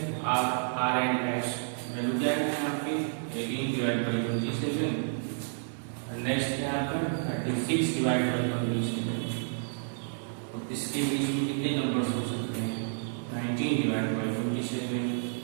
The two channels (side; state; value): left; silent; digital silence